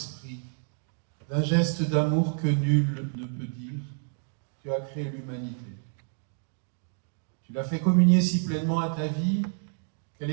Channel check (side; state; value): left; silent; 59 dB below the other